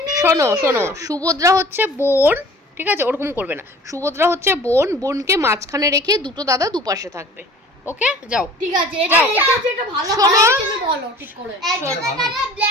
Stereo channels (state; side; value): normal; both; correlation 0.46